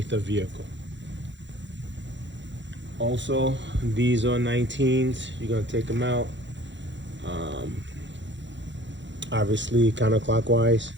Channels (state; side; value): late; left; 0.53 ms